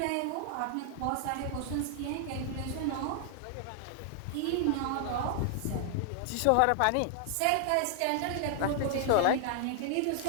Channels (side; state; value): both; different; correlation 0.00